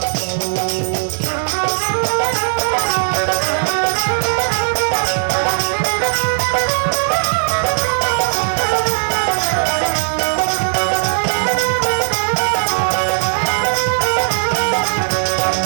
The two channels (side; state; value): left; silent; digital silence